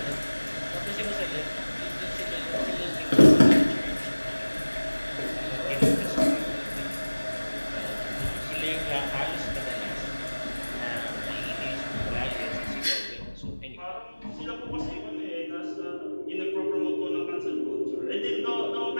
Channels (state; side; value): inverted; both; correlation -1.00